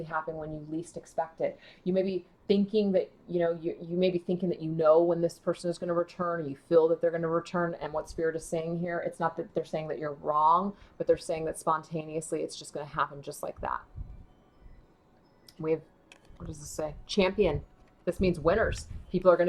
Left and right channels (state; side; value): identical; both; correlation 1.00